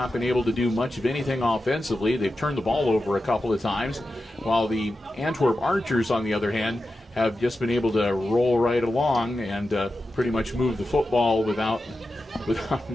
been able to do much of anything offensively. They've turned the ball over a couple of times, while the Antwerp Archers, on the other hand, have just been able to roll right along and pretty much move the football without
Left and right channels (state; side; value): normal; both; correlation 0.91